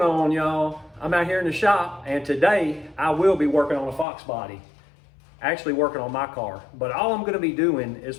on, y'all? I'm out here in the shop, and today I will be working on a Foxbody. Actually working on my car, but all I'm going to be doing is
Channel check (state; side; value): drops out; right; at 4.0 s